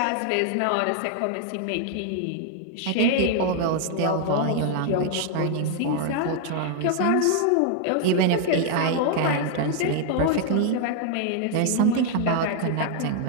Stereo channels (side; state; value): both; different; correlation 0.00